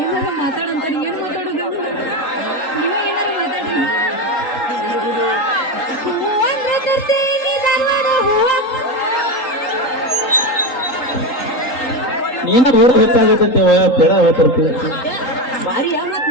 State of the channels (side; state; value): right; late; 3.8 ms